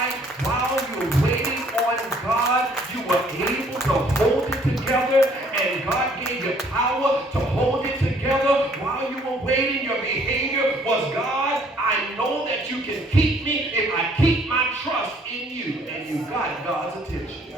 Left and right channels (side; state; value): both; normal; correlation 0.61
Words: while you're waiting on God, you were able to hold it together, and God gave you power to hold it together while you were waiting? Your behavior was, God, I know that you can keep me if I keep my trust in you, and you got God's attention.